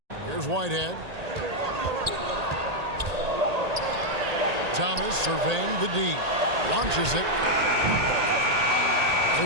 Here's Whitehead. Thomas surveying the D. Launches it.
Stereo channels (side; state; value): left; late; 1.8 ms